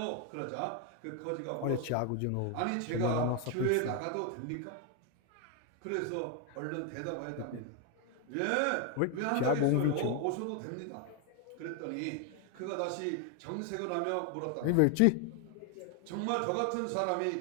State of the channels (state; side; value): different; both; correlation 0.01